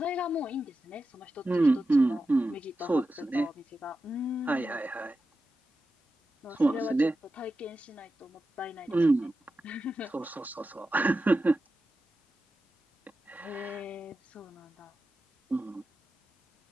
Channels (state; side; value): normal; both; correlation 0.91